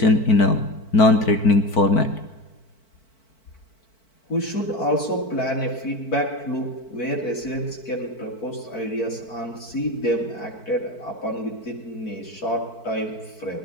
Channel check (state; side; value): late; right; 4.5 ms